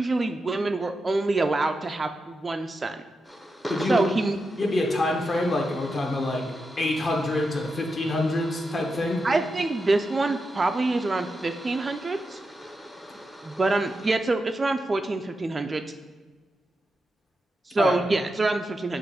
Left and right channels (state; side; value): normal; both; correlation 0.88